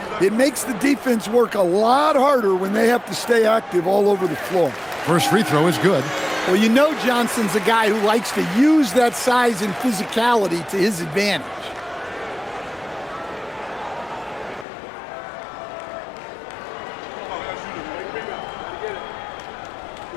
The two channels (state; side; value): drops out; right; at 14.7 s